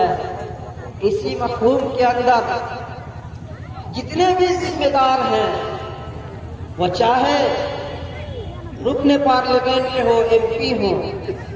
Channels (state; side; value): identical; both; correlation 1.00